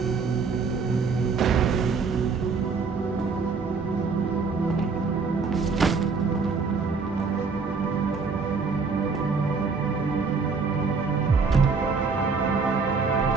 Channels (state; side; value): quieter; left; 4.8 dB